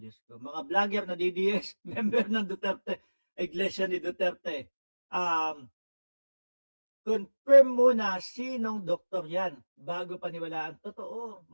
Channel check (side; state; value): both; inverted; correlation -1.00